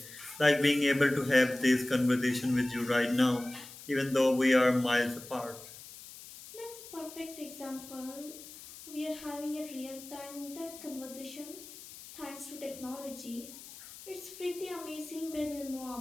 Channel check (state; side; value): noise; left; hiss, 16 dB below the sound